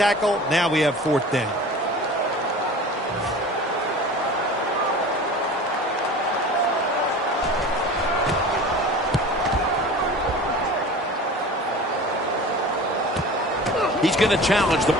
Now we have 4th down. He's going to challenge the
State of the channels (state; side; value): normal; both; correlation 0.38